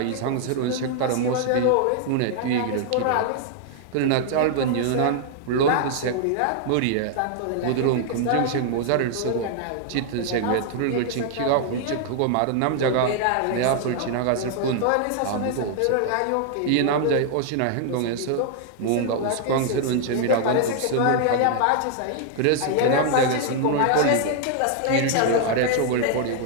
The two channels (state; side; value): different; both; correlation 0.00